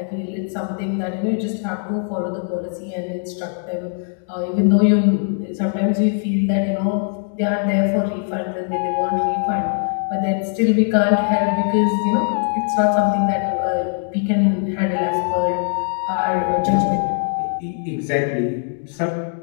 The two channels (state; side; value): silent; right; 57 dB below the other